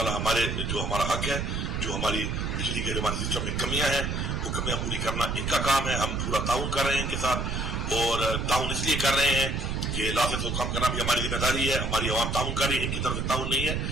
ہمارا حق ہے، جو ہماری بجلی کے ہمارے سسٹم میں کمیاں ہیں وہ کمیاں پوری کرنا ان کا کام ہے. ہم پورا تعاون کر رہے ہیں ان کے ساتھ اور تعاون اس لیے کر رہے ہیں کہ لاسٹ کو کم کرنا بھی ہماری ذمہ داری ہے. ہماری عوام تعاون کر رہی ہے، ان کی طرف سے تعاون نہیں ہے.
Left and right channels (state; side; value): noise; right; rumble, 1 dB below the sound